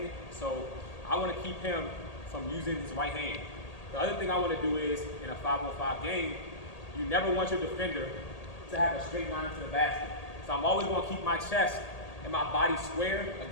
so I want to keep him from using his right hand. The other thing I want to do is in a 5-on-5 game, you never want your defender to have a straight line to the basket. So I'm always going to keep my chest and my body square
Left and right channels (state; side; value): late; right; 1.8 ms